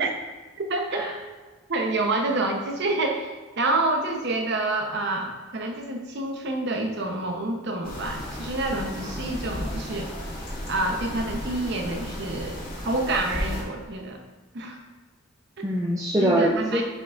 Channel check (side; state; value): both; normal; correlation 0.30